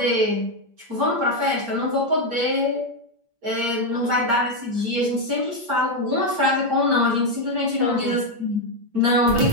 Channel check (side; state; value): left; late; 8.7 ms